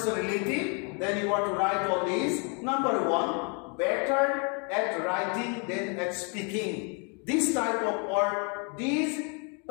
then you are to write all these. Number 1, better at writing than at speaking. This type of or these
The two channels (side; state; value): right; quieter; 36.4 dB